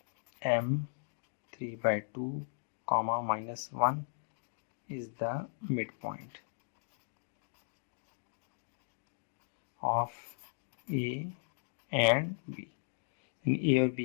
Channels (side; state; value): right; silent; digital silence